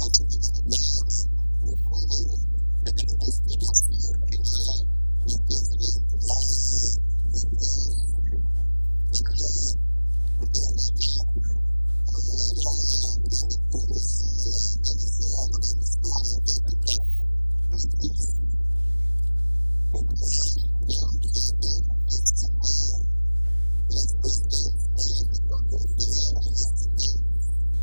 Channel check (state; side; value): inverted; both; correlation -1.00